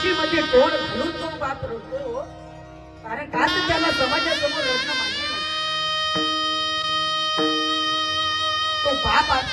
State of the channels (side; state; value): both; identical; correlation 1.00